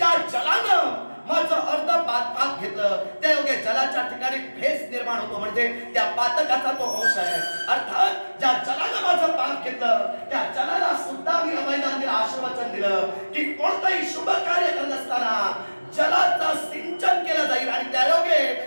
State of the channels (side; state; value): both; inverted; correlation -1.00